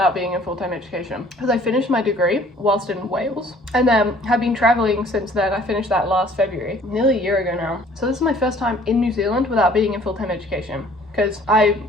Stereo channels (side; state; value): both; normal; correlation 0.55